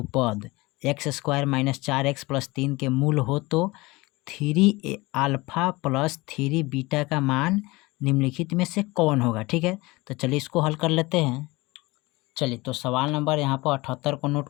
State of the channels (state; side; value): quieter; right; 22.2 dB